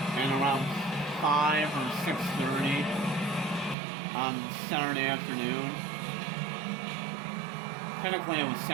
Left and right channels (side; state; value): left; drops out; at 3.8 s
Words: at around 5 or 6:30 on Saturday afternoon. Technically it was